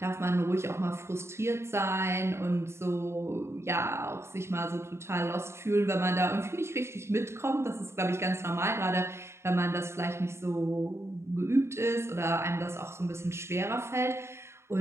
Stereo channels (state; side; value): late; left; 0.13 ms